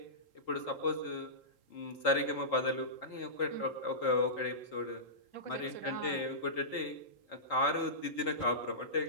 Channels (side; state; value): right; late; 4.1 ms